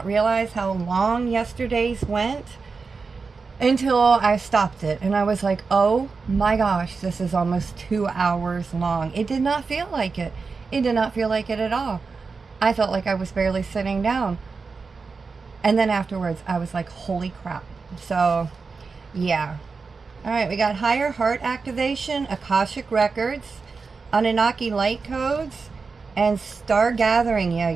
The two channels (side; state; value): left; quieter; 4.7 dB